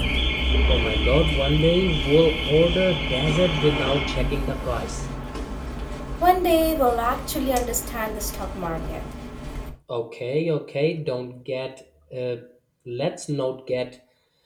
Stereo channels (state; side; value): identical; both; correlation 1.00